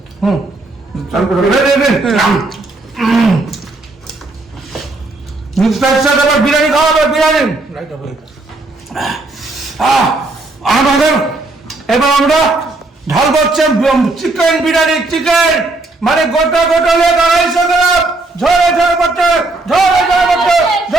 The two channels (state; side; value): quieter; left; 3.1 dB